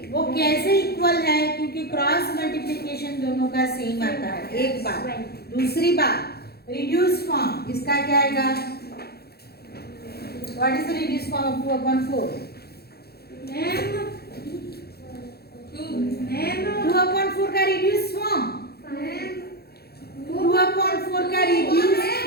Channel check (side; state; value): right; late; 0.46 ms